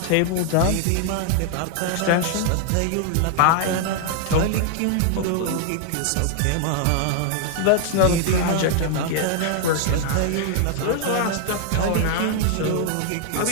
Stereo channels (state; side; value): different; both; correlation -0.01